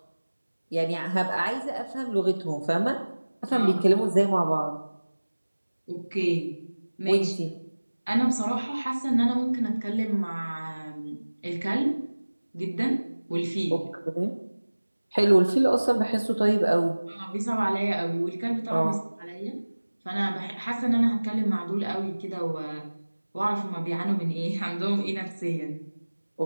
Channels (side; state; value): both; inverted; correlation -1.00